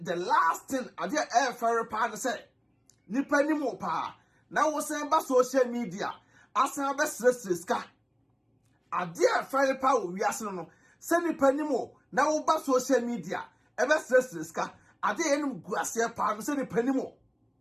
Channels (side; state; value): both; identical; correlation 1.00